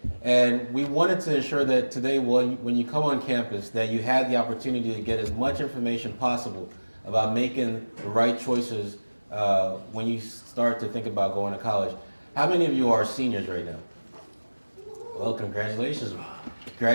And we wanted to ensure that today, when you come on campus, that you had the opportunity to get as much information possible about making the right choices when you start to think about going to college. How many of you are seniors right now? Well, congratulations.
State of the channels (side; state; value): both; inverted; correlation -1.00